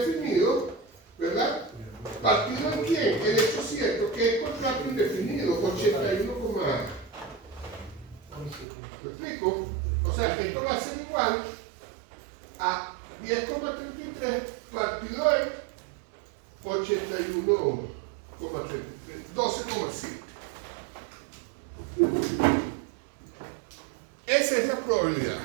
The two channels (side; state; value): left; drops out; at 8.7 s